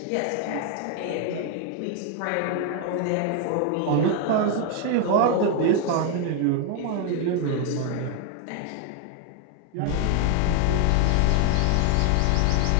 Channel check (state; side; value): different; both; correlation 0.00